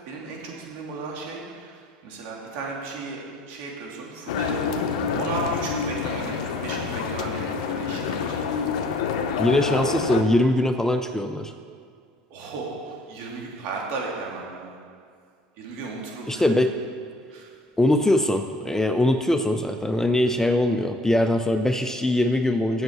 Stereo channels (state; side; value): normal; both; correlation 0.62